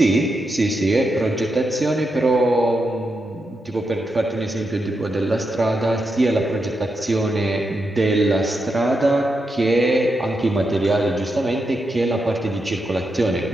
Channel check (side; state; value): both; normal; correlation 0.85